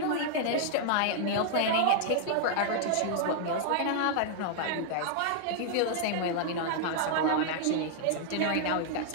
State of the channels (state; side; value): different; both; correlation -0.01